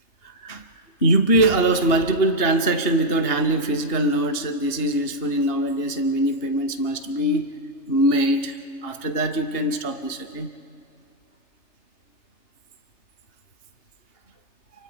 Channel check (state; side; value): late; right; 2.8 ms